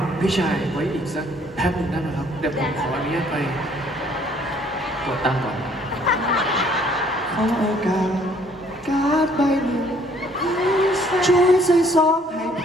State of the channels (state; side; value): normal; both; correlation 0.61